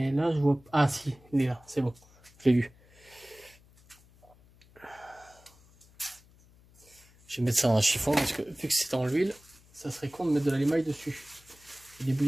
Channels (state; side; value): noise; left; hum, 27 dB below the sound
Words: là, je vois. Ah, si, il est là, c'est bon. Je l'ai vu. Je vais mettre ça dans un chiffon parce que vu que c'est dans l'huile, ça serait con de mettre de l'émail dessus. Et